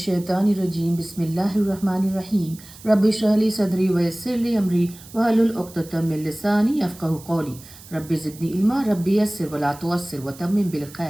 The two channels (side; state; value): right; noise; hiss, 20 dB below the sound